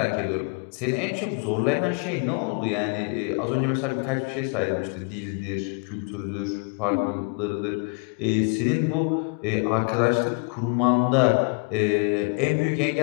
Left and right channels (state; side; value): quieter; right; 34.1 dB